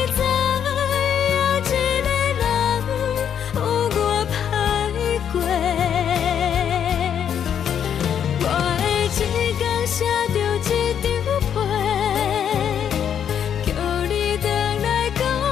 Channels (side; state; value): right; quieter; 8.7 dB